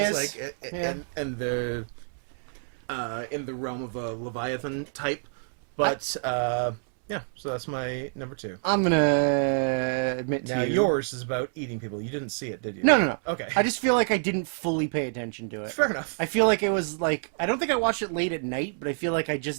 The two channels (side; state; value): left; silent; 60 dB below the other